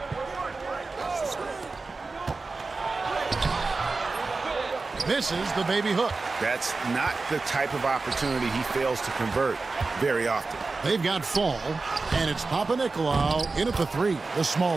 Misses the baby hook. That's not the type of opportunity he fails to convert very often. They've got Fall, and it's Papanikolaou in at the 3, the small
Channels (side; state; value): left; quieter; 3.8 dB